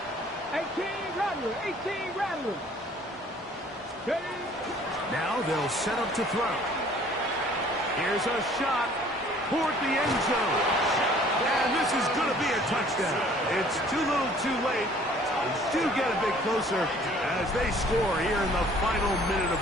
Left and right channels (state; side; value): normal; both; correlation 0.55